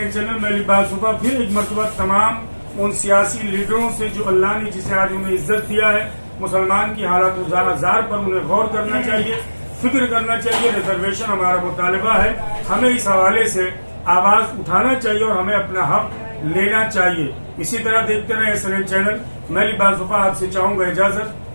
चैनल। मैं लिबास सुबह फिर एक मरतबा तमाम उन सियासी लीडरों से जो अल्लाह ने जिसे आज उन्हें इज्जत दिया है, मुसलमान की हालत जार पर उन्हें गौर करना चाहिए, फिक्र करना चाहिए। रिजर्वेशन हमारा मुतालबा है, हमें इस हवाले से आवाज उठाना चाहिए और हमें अपना हक लेना चाहिए। इसी तरह देखते रहे SNN चैनल। मैं लिबास सुबह आपसे चाहूंगा इजाजत।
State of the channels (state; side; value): inverted; both; correlation -1.00